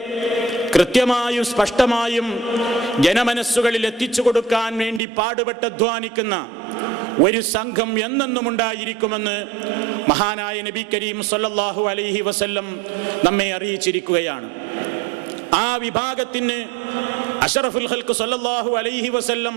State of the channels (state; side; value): drops out; left; at 5.0 s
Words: കൃത്യമായും സ്പഷ്ടമായും ജനമനസ്സുകളിൽ എത്തിച്ചു കൊടുക്കാൻ വേണ്ടി പാടുപെട്ട് അധ്വാനിക്കുന്ന ഒരു സംഘം എന്നെന്നും ഉണ്ടായിരിക്കുമെന്ന് മഹാനായ നബി കരീം സല്ലല്ലാഹു അലൈഹി വസല്ലം നമ്മെ അറിയിച്ചിരിക്കുകയാണ്. ആ വിഭാഗത്തിന് അഷ്റഫുൽ ഖൽഖ് സല്ലല്ലാഹു അലൈഹി വസല്ലം